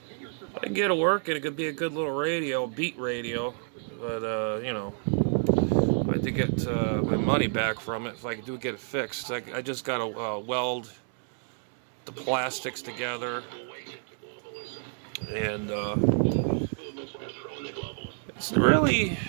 I can get it working. It could be a good little radio, beat radio, but I had to get my money back from it if I could get it fixed. I just got to weld the plastics together, and it's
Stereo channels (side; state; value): left; silent; 58 dB below the other